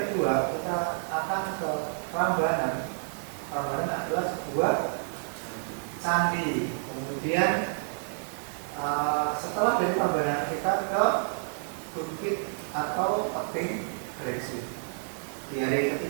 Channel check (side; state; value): left; silent; digital silence